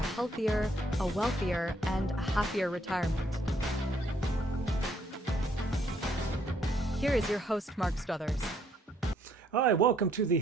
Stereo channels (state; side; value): normal; both; correlation 0.68